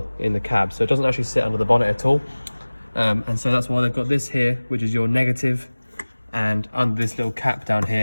in the cab, so it doesn't actually sit under the bonnet at all. And so that's why they've got this here, which is your negative, and under this little cap down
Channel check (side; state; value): both; inverted; correlation -1.00